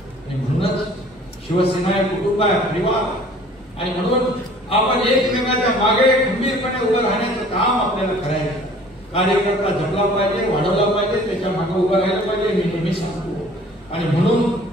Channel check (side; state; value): both; normal; correlation 0.51